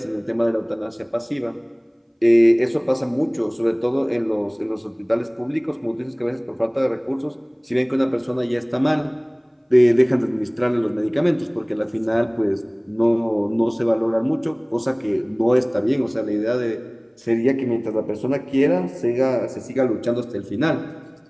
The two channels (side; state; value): both; identical; correlation 1.00